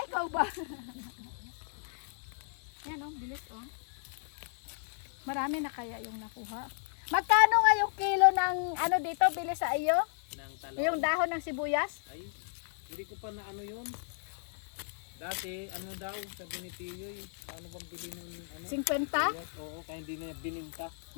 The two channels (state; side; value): silent; right; 55 dB below the other